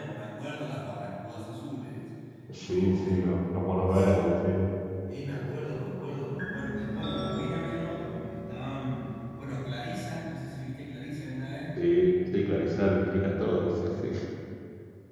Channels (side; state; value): both; identical; correlation 1.00